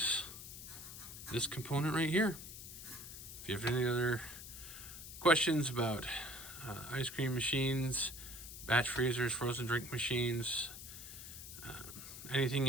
this component right here. If you have any other questions about ice cream machines, batch freezers, frozen drink machines, anything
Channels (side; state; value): left; noise; hiss, 11 dB below the sound